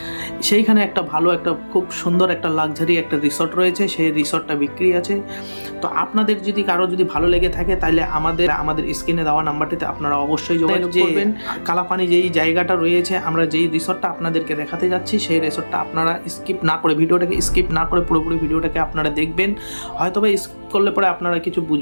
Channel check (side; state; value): both; inverted; correlation -1.00